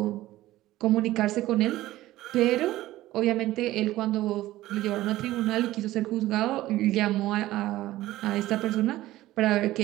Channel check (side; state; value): left; quieter; 15.9 dB